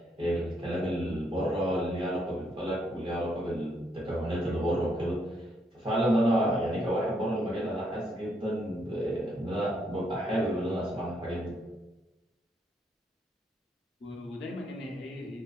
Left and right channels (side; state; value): both; normal; correlation 0.74